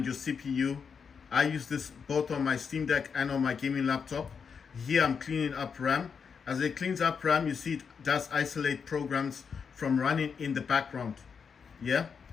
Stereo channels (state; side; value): quieter; right; 6.2 dB